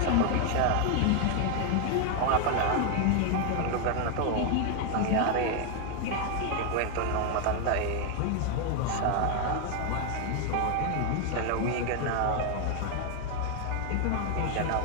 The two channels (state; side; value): different; both; correlation 0.00